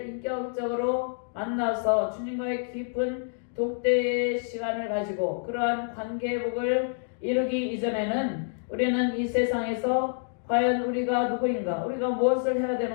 인격적으로 만나서 주님과의 깊은 독대의 시간을 가지고 그러한 관계 회복을 이루기 이전에는 우리는 이 세상에서 과연 우리가 누구인가, 우리가 무엇을 해야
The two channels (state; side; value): silent; right; digital silence